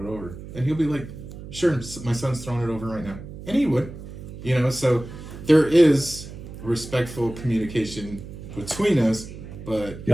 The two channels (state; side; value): noise; right; hum, 12 dB below the sound